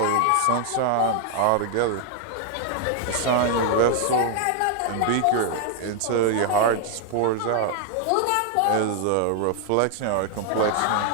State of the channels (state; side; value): different; both; correlation 0.00